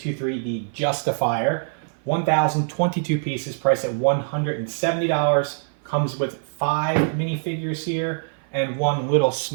The Justifier. 1,022 pieces, priced at $170. Comes with 5 minifigures here and one little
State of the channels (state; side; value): silent; left; 56 dB below the other